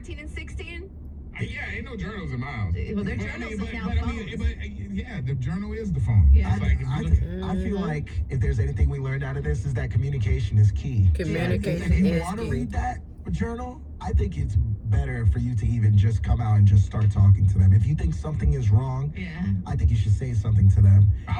and 16? Yeah, ain't no journals in my house. Well, they're But journals but, is now but, phones. yeah, the journal is the phone. Yeah. It's like, if you look, I feel like if there's anything we learned out of this is that communication is key. Communication If you is want to key. read that journal, I think it's better for you to even just come out and just start talking to them. If you think something is wrong, Yeah. I think you should say something to them. I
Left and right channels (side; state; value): both; identical; correlation 1.00